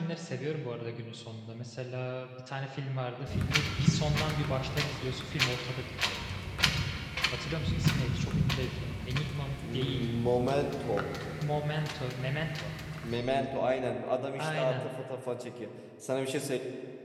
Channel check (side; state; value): both; identical; correlation 1.00